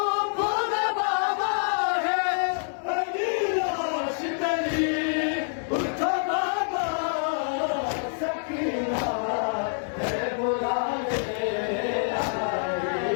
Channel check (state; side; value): silent; right; digital silence